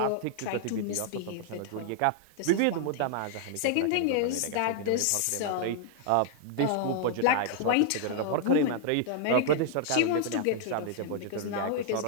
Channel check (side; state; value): both; different; correlation 0.00